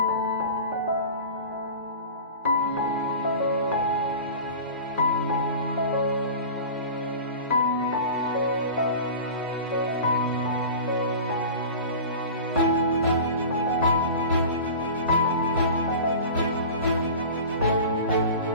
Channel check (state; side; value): inverted; both; correlation -0.36